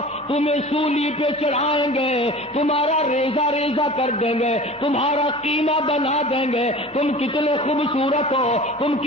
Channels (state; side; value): normal; both; correlation 0.39